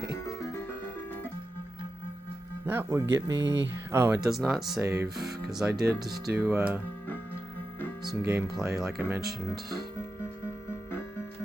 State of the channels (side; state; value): both; normal; correlation 0.91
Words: That would get me... Oh, it does not save, because I did do some gameplay, like I mentioned